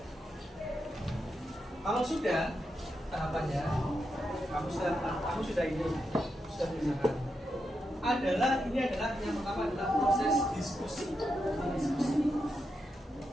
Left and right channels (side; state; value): both; normal; correlation 0.85